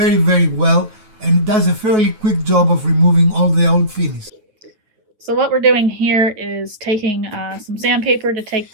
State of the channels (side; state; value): left; late; 9.3 ms